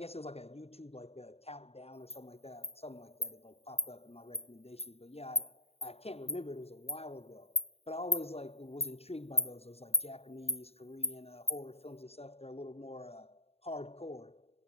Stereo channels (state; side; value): late; right; 0.29 ms